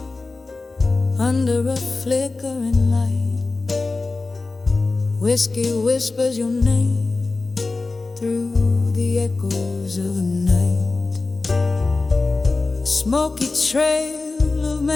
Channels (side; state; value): right; quieter; 3.6 dB